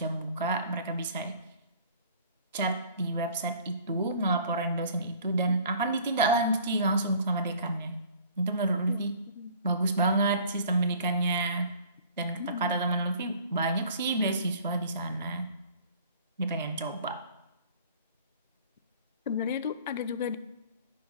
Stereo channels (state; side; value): inverted; both; correlation -0.51